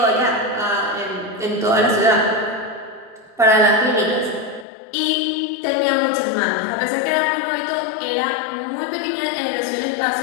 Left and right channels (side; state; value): right; drops out; at 4.7 s